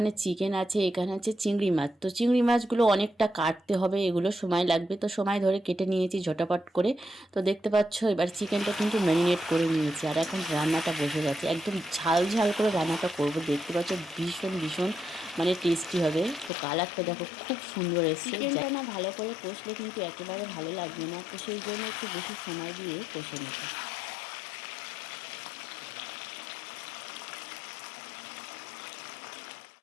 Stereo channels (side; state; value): right; drops out; at 16.5 s